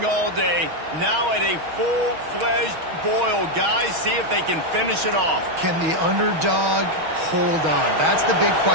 all day. Now at a full-fledged boil. Guys, see if they can finish it off. Can the underdog hold on? That's the big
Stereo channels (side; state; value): left; late; 6.3 ms